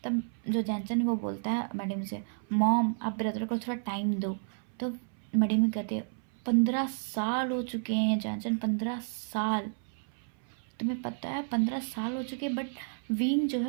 तब जो जैनचन है वो बोलता है मैडम से, मॉम आप ब्रदर को थोड़ा टाइम दो। तो मैडम कहते हैं 15 साल हो चुके हैं जैनचन, 15 साल, तुम्हें पता है 15 साल हो चुके, बट विंग जो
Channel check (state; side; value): silent; left; 57 dB below the other